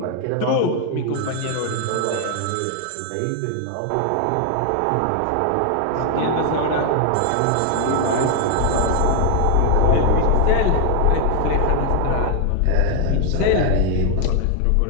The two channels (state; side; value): different; both; correlation 0.00